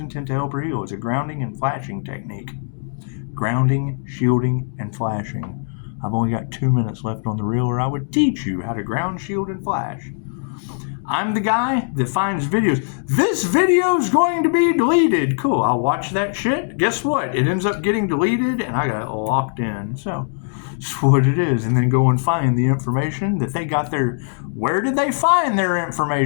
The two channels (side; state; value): right; silent; 65 dB below the other